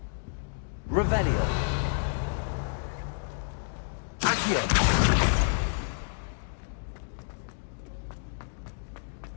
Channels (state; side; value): silent; right; digital silence